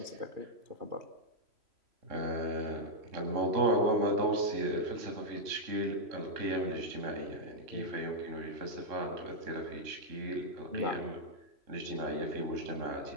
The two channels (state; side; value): late; left; 3.0 ms